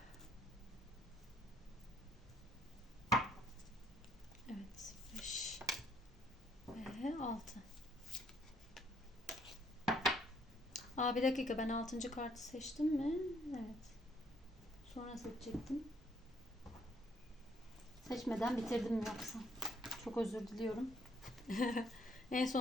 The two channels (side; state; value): both; normal; correlation 0.67